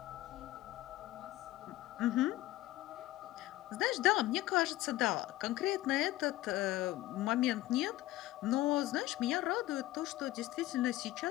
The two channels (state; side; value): quieter; right; 16.2 dB